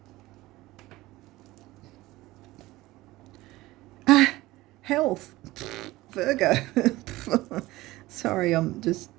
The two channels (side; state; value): left; quieter; 18.5 dB